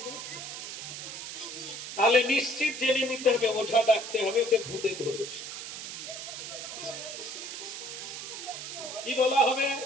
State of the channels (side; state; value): right; noise; hiss, 8 dB below the sound